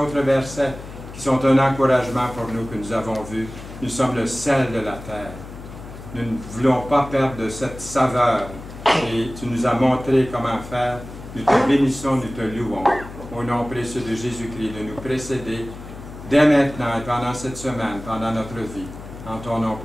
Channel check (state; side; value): noise; left; hum, 13 dB below the sound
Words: versets qui sont un encouragement pour nous que nous avons vus. Nous sommes le sel de la terre. Nous ne voulons pas perdre de cette saveur et tu nous as montré comment faire. Nous te bénissons, nous te louons. Au nom précieux de Jésus-Christ, de nous précéder dès maintenant et pendant cette semaine, pendant notre vie. En ton nom